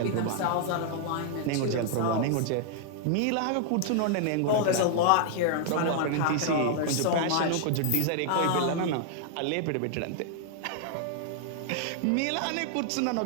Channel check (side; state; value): both; different; correlation -0.01